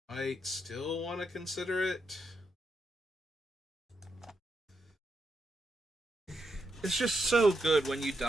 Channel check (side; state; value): both; normal; correlation 0.82